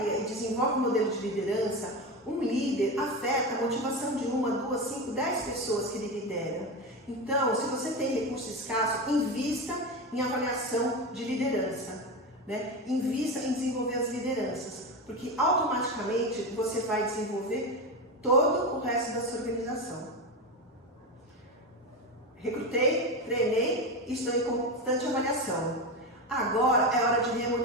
e desenvolve um modelo de liderança, um líder afeta a motivação de 1, 2, 5, 10 pessoas que ele lidera. Então, se você tem recurso escasso, invista em avaliação de liderança. Né? Invista em desenvolver as lideranças, porque automaticamente você vai desenvolver todo o resto da sua organização. Recrutei, treinei e estou em constante avaliação. Agora é hora de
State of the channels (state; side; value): normal; both; correlation 0.19